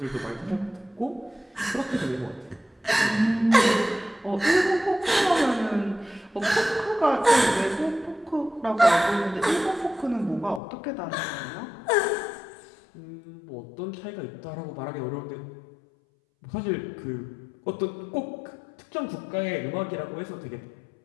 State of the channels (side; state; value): right; drops out; at 10.6 s